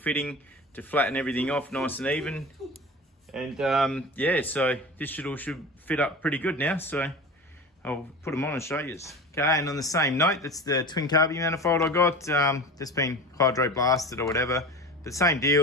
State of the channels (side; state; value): both; normal; correlation 0.32